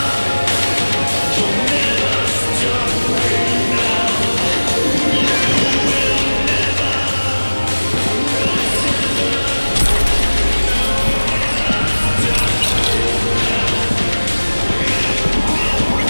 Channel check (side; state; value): both; inverted; correlation -1.00